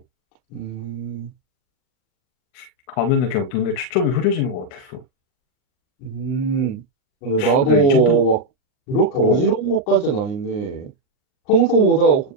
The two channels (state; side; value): late; right; 39 ms